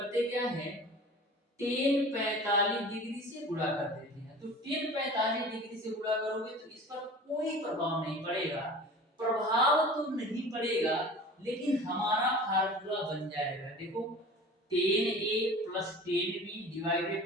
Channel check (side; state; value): both; normal; correlation 0.40